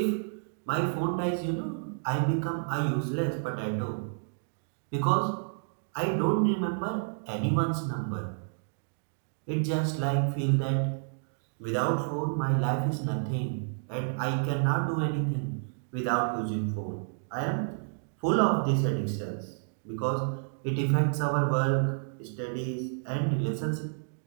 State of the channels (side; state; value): left; silent; digital silence